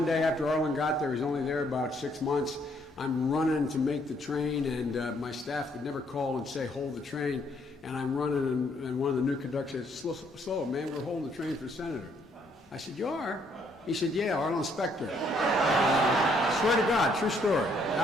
day after Arlen got there, he's only there about 6 months, I'm running to make the train, and my staff would never call and say, "Hold the train." And I'm running, and one of the new conductors said, "Slow, man, we're holding the train for the senator." I said, "You are?" He said, "Yeah, Arlen Specter." Swear to God, true story.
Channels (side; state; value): both; normal; correlation 0.68